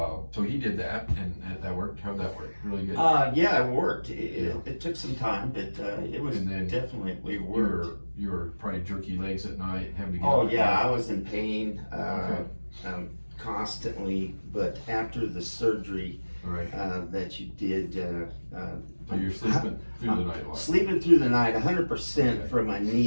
so he did that, and that worked. How'd that work? Really good? Yeah, it worked. It took some time, but it was definitely worked. You were probably jerky legs at night, having to get Oh yeah, I was in pain constantly, but after the surgery that you did, so you're sleeping through the night a lot. Sleeping through the night, 100% from my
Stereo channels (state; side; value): inverted; both; correlation -1.00